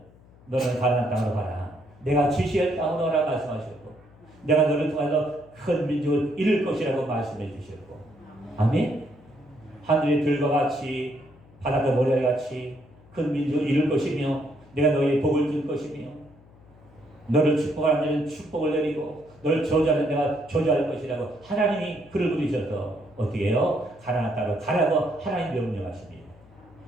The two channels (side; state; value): left; noise; hum, 25 dB below the sound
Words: 너는 가나안 땅으로 가라. 내가 지시할 땅으로 가라 말씀하셨고, 내가 너를 통해서 큰 민족을 이룰 것이라고 말씀해 주셨고, 아멘. 하늘의 들과 같이 바닷가 모래와 같이 큰 민족을 이룰 것이며, 내가 너희의 복을 줄 것이며, 너를 축복하는 데는 축복을 내리고 너를 저주하는 내가 저주할 것이라고 하나님이 그를 부르셔서 어떻게 해요? 가나안 땅으로 가라고 하나님 명령하십니다.